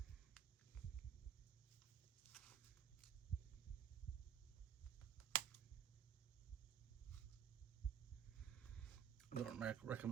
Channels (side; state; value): left; quieter; 8.5 dB